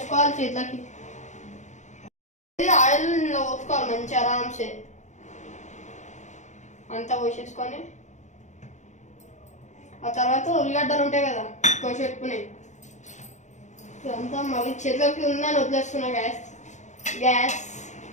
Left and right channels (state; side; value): late; right; 0.34 ms